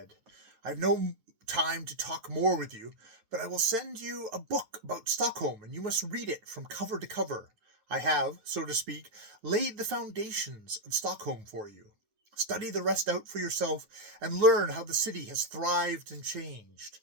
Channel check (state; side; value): late; left; 9.4 ms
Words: "I have no time to talk more with you, but I will send you a book about Stockholm, and you must read it from cover to cover. I have, so to speak, laid the foundations of Stockholm for you. Study the rest out for yourself, and learn how the city has thrived and changed.